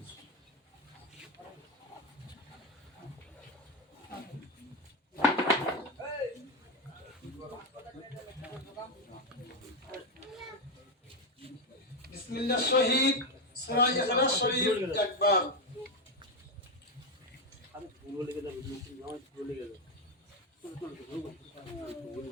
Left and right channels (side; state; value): both; normal; correlation 0.08